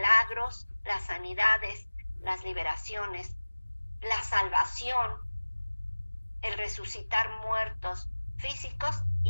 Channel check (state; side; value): inverted; both; correlation -1.00